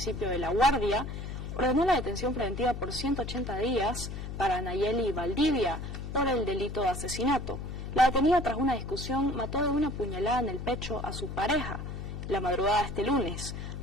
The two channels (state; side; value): noise; left; hum, 7 dB below the sound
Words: de La Guardia ordenó la detención preventiva por 180 días para Nayeli Valdivia por el delito de asesinato. La detenida, tras una discusión, mató de una puñalada en el pecho a su pareja la madrugada de este lunes.